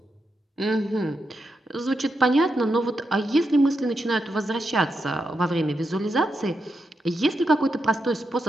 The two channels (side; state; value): both; normal; correlation 0.85